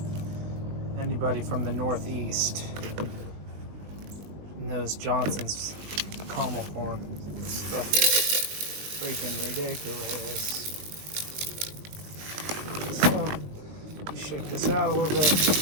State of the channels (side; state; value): left; late; 20 ms